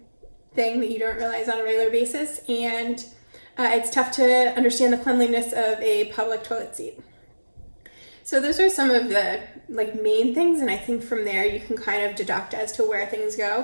thing that you don't realize on a regular basis, and it's tough to understand the cleanliness of a public toilet seat. So those are some of the main things, and I think from there you can kind of deduct as to where things go.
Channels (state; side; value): inverted; both; correlation -1.00